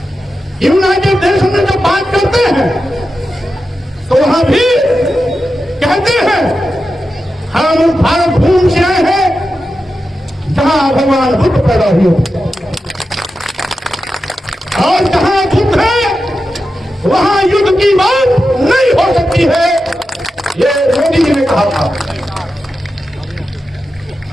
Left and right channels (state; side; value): normal; both; correlation 0.90